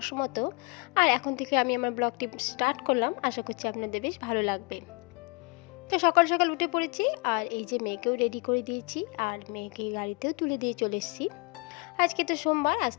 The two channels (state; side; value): quieter; right; 29.8 dB